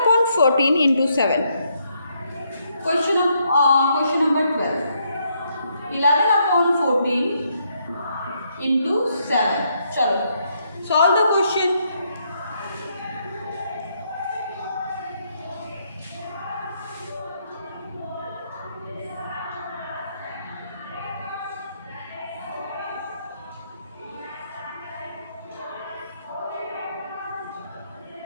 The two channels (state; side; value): inverted; both; correlation -0.75